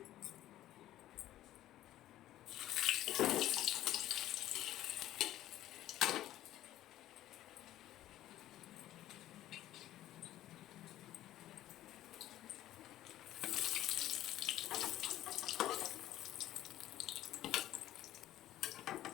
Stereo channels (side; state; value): right; quieter; 13.7 dB